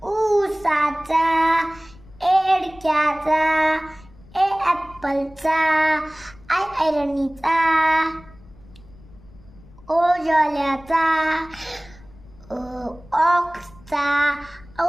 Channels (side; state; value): left; noise; rumble, 23 dB below the sound